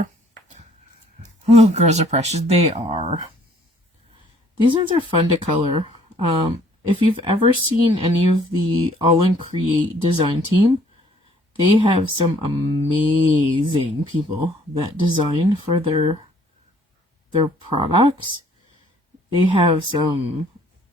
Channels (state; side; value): normal; both; correlation 0.60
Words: Oh, girls are precious. They are. These ones are fun to color. If you've ever seen any of the Aall Create design team, they have some amazing people that design for their products. They have some